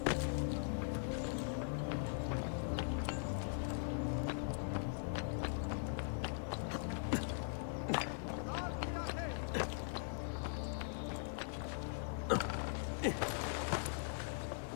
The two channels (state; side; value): silent; right; digital silence